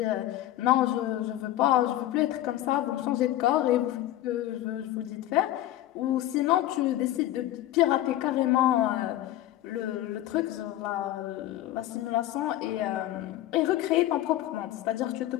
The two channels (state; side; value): quieter; right; 14.1 dB